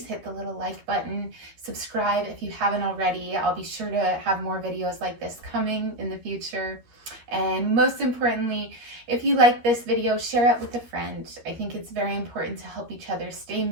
hit the little like button, subscribe if you haven't already. I'll be sure to have more videos like this coming in the future. And most importantly, if you like this video, share it with a friend. I think it's very important to help each other stay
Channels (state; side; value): late; left; 13 ms